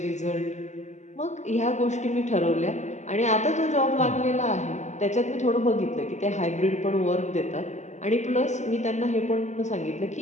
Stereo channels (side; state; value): right; late; 0.34 ms